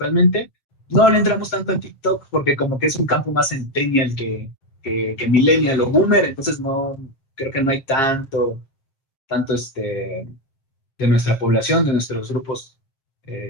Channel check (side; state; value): right; late; 7.5 ms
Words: No le entramos tanto en TikTok porque como que es un campo más centennial que millennial o boomer, entonces no, creo que no hay tanto de nuestra población, de nuestros grupos